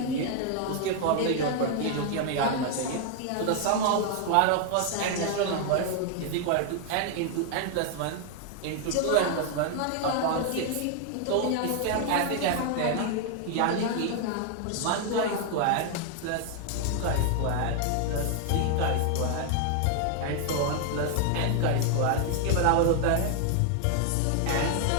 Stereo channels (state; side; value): different; both; correlation 0.00